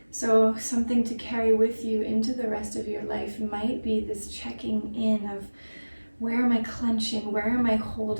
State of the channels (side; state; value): both; inverted; correlation -1.00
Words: So something to carry with you into the rest of your life might be this checking in of, where am I clenching? Where am I